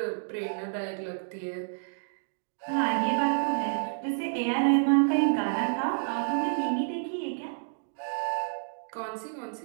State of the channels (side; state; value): left; silent; digital silence